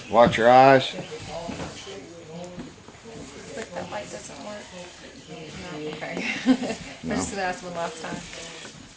Watch your eyes. But that light doesn't work. No, okay. I just gonna ask one last time.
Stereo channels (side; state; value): both; identical; correlation 1.00